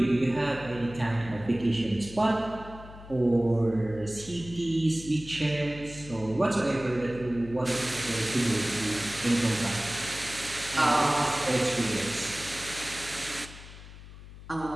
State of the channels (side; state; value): left; noise; hum, 16 dB below the sound